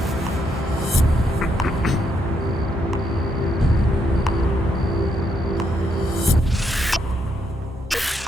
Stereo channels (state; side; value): normal; both; correlation 0.77